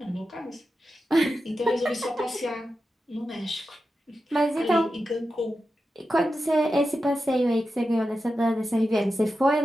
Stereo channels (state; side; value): normal; both; correlation 0.90